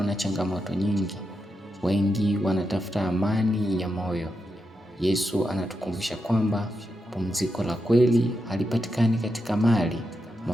na changamoto nyingi, wengi wanatafuta amani ya moyo. Yesu anatukumbusha kwamba pumziko la kweli halipatikani katika mali,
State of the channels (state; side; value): normal; both; correlation 0.86